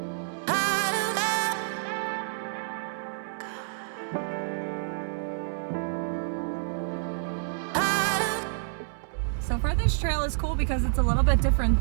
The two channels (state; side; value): silent; left; 59 dB below the other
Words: So far, this trail is cool because it's a little bit different